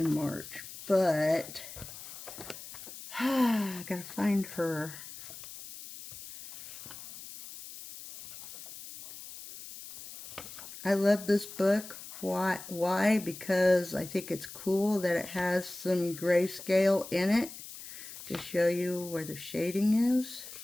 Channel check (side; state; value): left; noise; hiss, 13 dB below the sound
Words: But I gotta find her. I love this book. Why? Because I think it's cool that it has some grayscale in it to show you where the shading is.